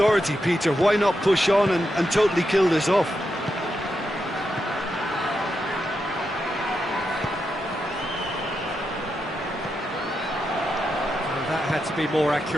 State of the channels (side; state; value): both; normal; correlation 0.85